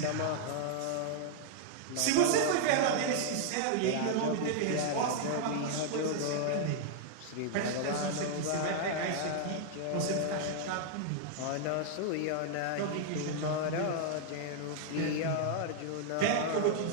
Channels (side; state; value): both; different; correlation 0.00